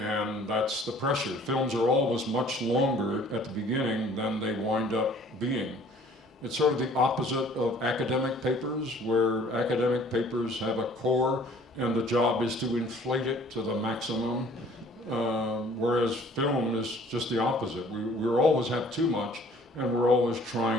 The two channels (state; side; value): normal; both; correlation 0.54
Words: And that's the pressure. Films are always much longer at the beginning than they wind up being. It's sort of the opposite of academic papers, where academic papers have a core and the job is to inflate it to the maximum, whereas film is just the opposite. We always have too much, and we're always